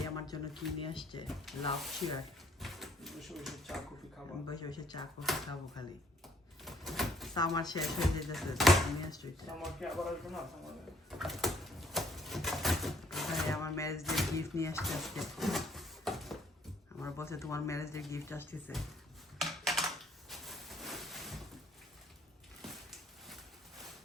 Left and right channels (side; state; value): both; normal; correlation 0.63